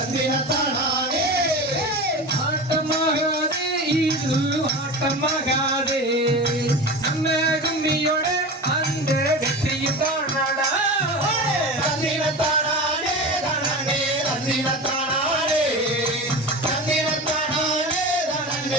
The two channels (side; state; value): both; normal; correlation 0.29